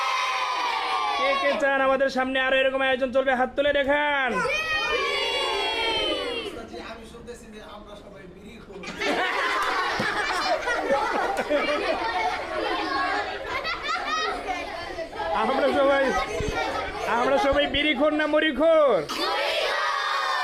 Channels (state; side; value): identical; both; correlation 1.00